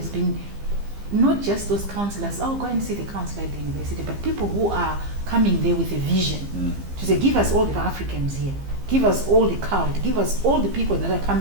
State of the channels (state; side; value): late; left; 15 ms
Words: been not just those counselors, go and see the counselor at the university, but people who are coming there with a vision to say, give us all the Africans here, give us all the cult, give us all the people that are